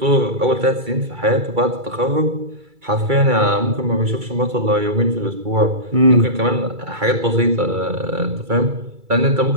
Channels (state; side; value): late; left; 2.3 ms